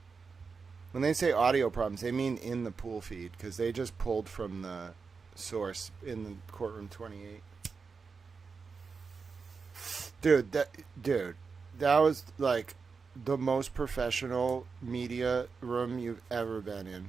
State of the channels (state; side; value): quieter; left; 5.0 dB